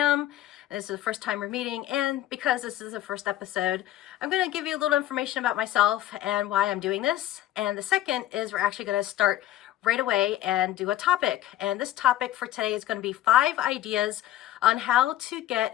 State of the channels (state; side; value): quieter; right; 13.5 dB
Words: this is the first time we're meeting. And because this is the first episode, I'm going to give you a little information about myself and why I'm doing this. And the second is we're actually going to start right away and do a topic. And this topic for today is going to be 5 ideas on how to